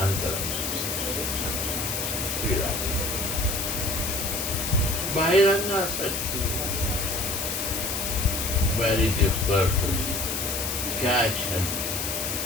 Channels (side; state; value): left; noise; hiss, 2 dB below the sound